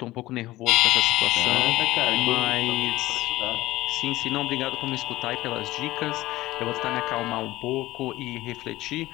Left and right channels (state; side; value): quieter; right; 17.5 dB